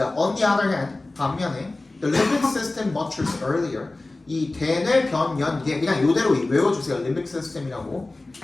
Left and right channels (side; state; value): right; quieter; 3.0 dB